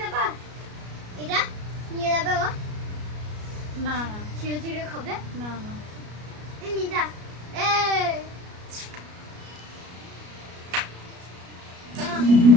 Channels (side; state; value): left; late; 33 ms